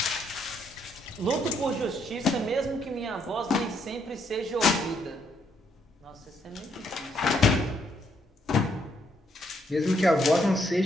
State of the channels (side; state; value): both; normal; correlation 0.73